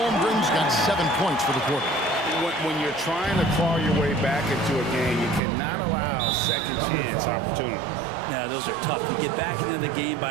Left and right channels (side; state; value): left; drops out; at 5.4 s